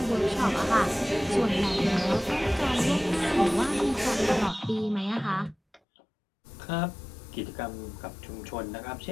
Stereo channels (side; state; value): right; drops out; at 5.8 s